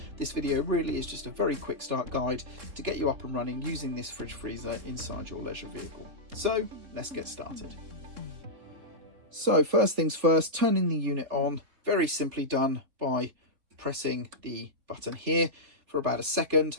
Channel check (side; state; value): left; late; 3.4 ms